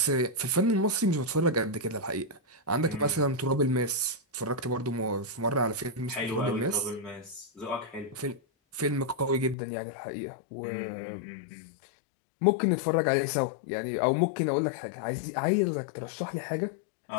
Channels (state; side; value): drops out; right; at 9.6 s